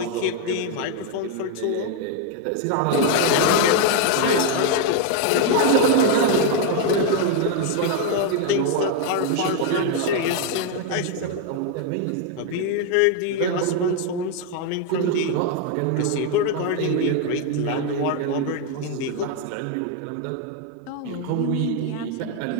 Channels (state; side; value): different; both; correlation 0.01